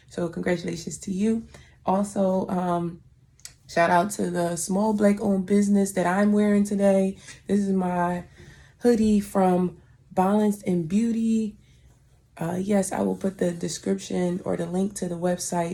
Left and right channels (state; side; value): identical; both; correlation 1.00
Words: So congratulations to you. Also, shout out to the small Black owned business that I'm wearing today. This is my hoodie from Balance and Beauty. Yes, I will put the description or the link to the